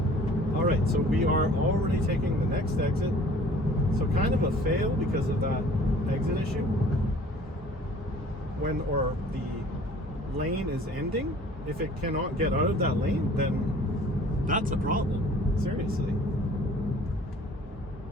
All right, so we are already taking the next exit. So kind of a fail because of that exit issue. Or the lane is ending. If it cannot get out of that lane, then that's a problem. Seriously.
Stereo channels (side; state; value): both; normal; correlation 0.50